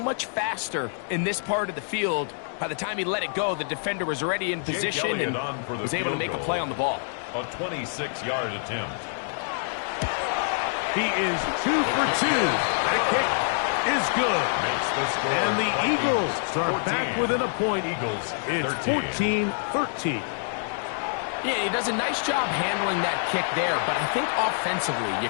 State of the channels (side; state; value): right; silent; digital silence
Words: much faster in this part of the field. By the time he let it go, the defender was already in position and was able to make a play on the ball. A 26-yard attempt. He is 2 for 2. That kick is good. And the Eagles are back within a point. It's 14-13. Yeah, he does a nice job handling that kick there, but I think offensively, you